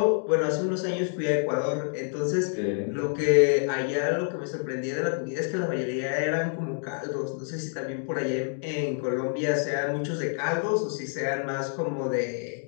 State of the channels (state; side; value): silent; right; 60 dB below the other